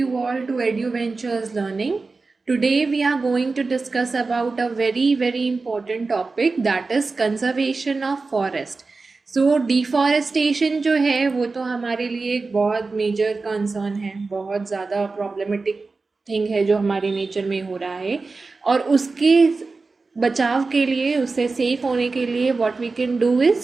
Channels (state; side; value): quieter; left; 3.9 dB